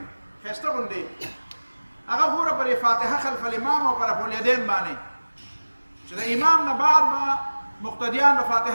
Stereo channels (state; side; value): inverted; both; correlation -1.00